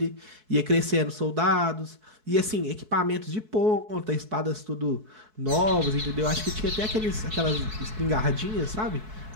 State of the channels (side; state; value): left; late; 4.6 ms